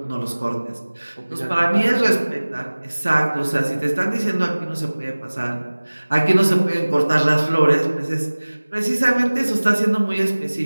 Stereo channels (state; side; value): inverted; both; correlation -1.00